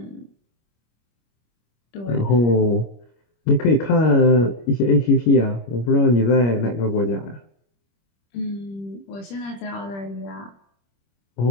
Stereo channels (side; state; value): right; late; 25 ms